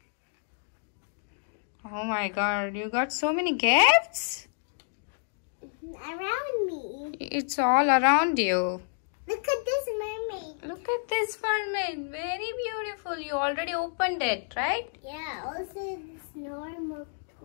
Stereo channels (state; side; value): silent; right; digital silence